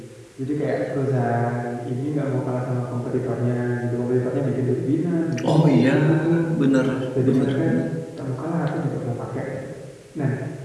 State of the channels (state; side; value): identical; both; correlation 1.00